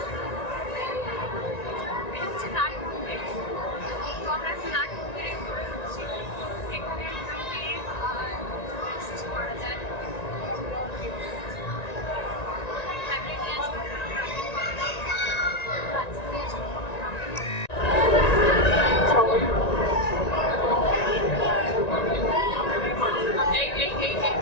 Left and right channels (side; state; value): right; late; 1.9 ms